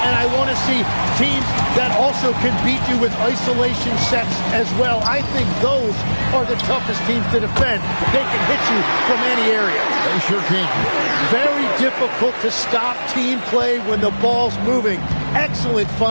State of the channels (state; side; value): inverted; both; correlation -1.00